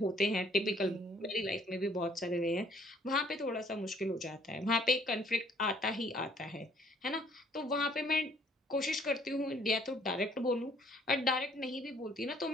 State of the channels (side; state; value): both; normal; correlation 0.62